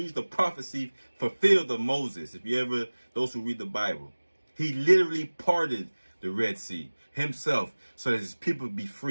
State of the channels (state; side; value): inverted; both; correlation -1.00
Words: prophecy fulfilled of Moses. If you ever, those who read the Bible, he literally parted the Red Sea himself so that his people would be